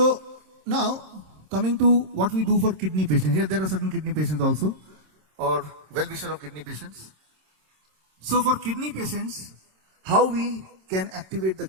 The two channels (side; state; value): left; late; 26 ms